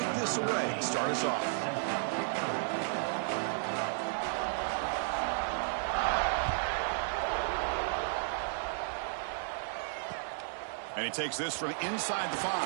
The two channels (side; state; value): left; silent; 55 dB below the other